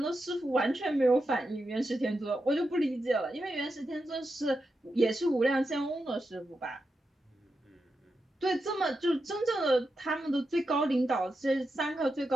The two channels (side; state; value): both; normal; correlation 0.88